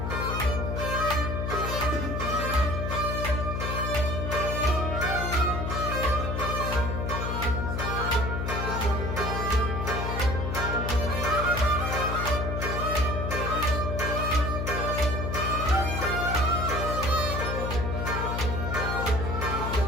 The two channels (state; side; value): noise; left; hum, 2 dB below the sound